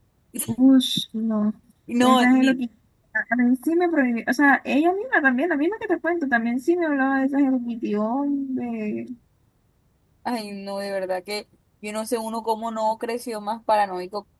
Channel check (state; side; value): identical; both; correlation 1.00